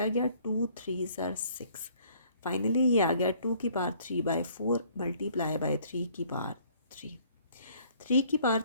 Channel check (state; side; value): inverted; both; correlation -0.60